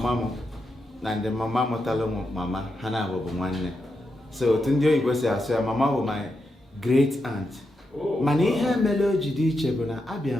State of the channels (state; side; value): normal; both; correlation 0.85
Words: m na ndị mama mụtalụ mama ha na-abụ nwanne. So otu ndị oyibo si asụ ya mama bụ my great aunt. Mana ihe mere o ji dị iche bụ na abịa